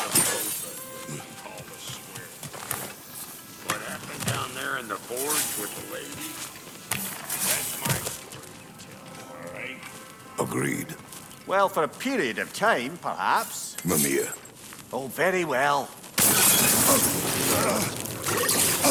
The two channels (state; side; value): identical; both; correlation 1.00